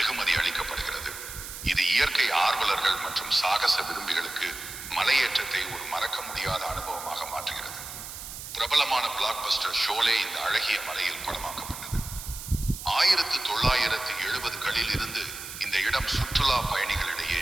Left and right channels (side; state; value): right; noise; hiss, 10 dB below the sound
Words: அளிக்கப்படுகிறது. இது இயற்கை ஆர்வலர்கள் மற்றும் சாகச விரும்பிகளுக்கு மலையேற்றத்தை ஒரு மறக்க முடியாத அனுபவமாக மாற்றுகிறது. பிரபலமான பிளாக் பஸ்டர் ஷோலே இந்த அழகிய மலையில் படமாக்கப்பட்டது. 1970களில் இருந்து இந்த இடம் சுற்றுலா பயணிகளிடையே